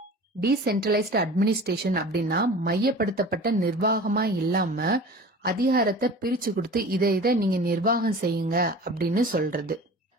டீசென்ட்ரலைஸ்டு அட்மினிஸ்ட்ரேஷன் அப்படின்னா மையப்படுத்தப்பட்ட நிர்வாகமா இல்லாம அதிகாரத்தை பிரிச்சு கொடுத்து இதை நீங்க நிர்வாகம் செய்யுங்க அப்படின்னு சொல்றது.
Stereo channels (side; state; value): both; normal; correlation 0.39